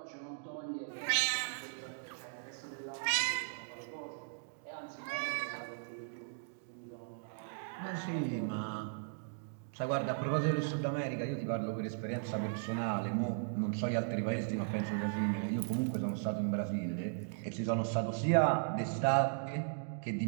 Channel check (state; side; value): silent; left; digital silence